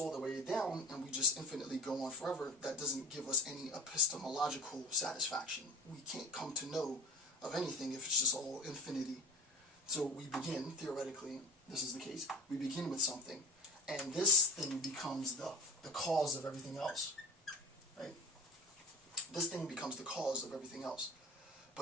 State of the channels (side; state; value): both; normal; correlation 0.36